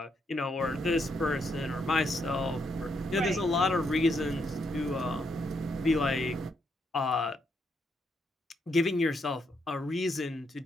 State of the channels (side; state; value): both; normal; correlation 0.77